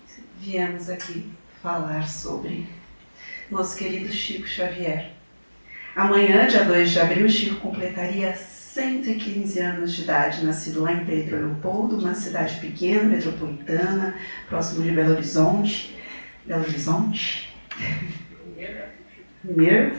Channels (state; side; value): inverted; both; correlation -1.00